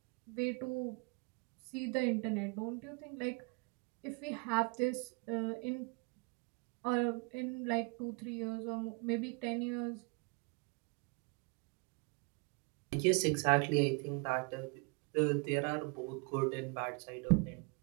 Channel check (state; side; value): quieter; left; 32.9 dB